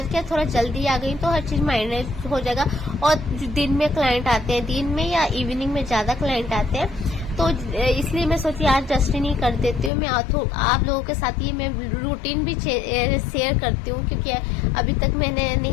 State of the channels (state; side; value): drops out; right; at 9.9 s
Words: क्या थोड़ा जल्दी आ गई, तो हर चीज मैनेज हो जाएगा। और दिन में क्लाइंट आते हैं, दिन में या इवनिंग में ज्यादा क्लाइंट आते हैं, तो इसलिए मैं सोची आज डस्टिंग ही कर देती हूँ। मैं आप लोगों के साथ ये मैं रूटीन भी शेयर करती हूँ, क्योंकि अभी तक मैंने